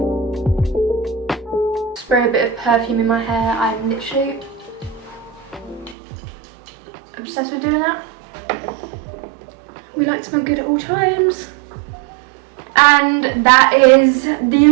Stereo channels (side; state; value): left; drops out; at 6.0 s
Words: Spray a bit of perfume in my hair. I'm literally obsessed with doing that. We like to smell good at all times. And that is the